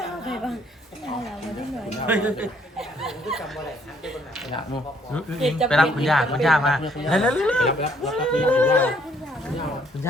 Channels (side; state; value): both; normal; correlation 0.65